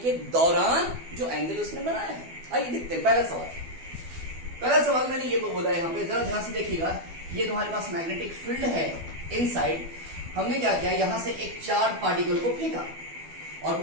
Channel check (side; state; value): left; late; 12 ms